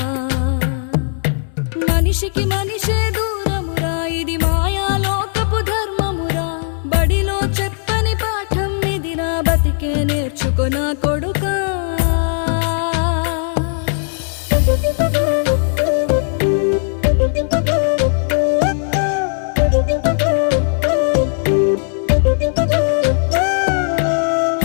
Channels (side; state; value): right; silent; digital silence